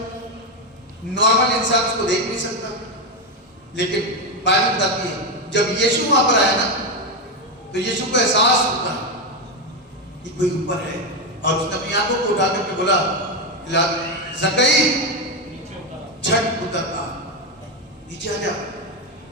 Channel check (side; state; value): both; normal; correlation 0.09